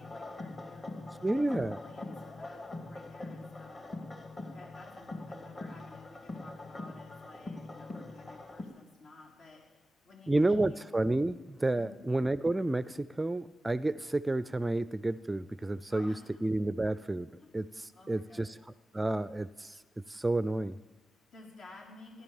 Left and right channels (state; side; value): normal; both; correlation 0.97